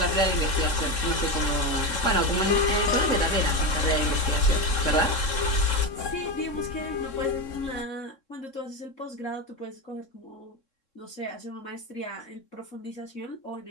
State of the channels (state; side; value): late; right; 3.7 ms